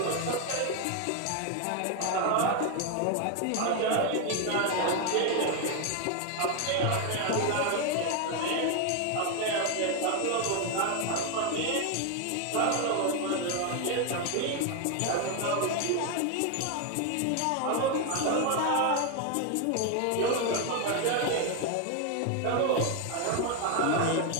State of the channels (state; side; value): different; both; correlation 0.01